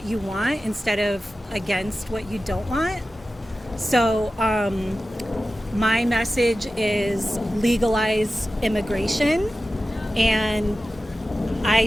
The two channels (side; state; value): both; normal; correlation 0.94